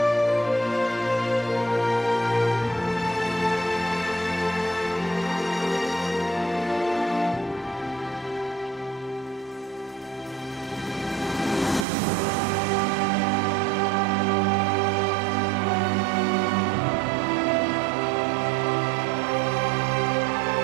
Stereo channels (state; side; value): drops out; left; at 11.9 s